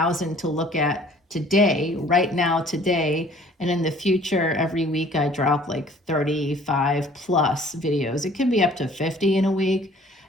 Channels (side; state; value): both; normal; correlation 0.54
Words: to look at today, right now, today. And in the future, every week I drop like 35 plus videos. It can be up to 50 in a week.